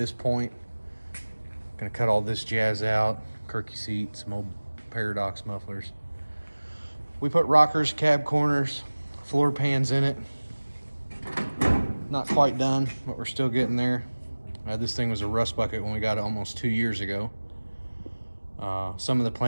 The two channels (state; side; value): inverted; both; correlation -1.00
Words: point. Gonna cut all this jazz out. Kirky seats, some old Paradox mufflers. We put rockers, cab corners, floor pans in it. Not quite done, but we're still getting there. This thing was a rust bucket when we got it almost 2 years ago. Some of the